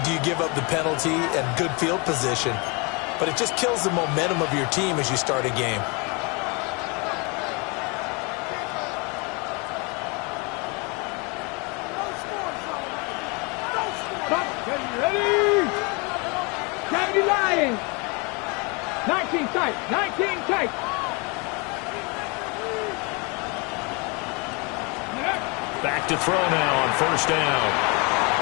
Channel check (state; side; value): quieter; right; 30.4 dB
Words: do you give up the penalty and good field position, but it just kills the momentum of your team as you start a game. Ready? County Lions. 19 tight. 19 tight. Back to throw now on first down.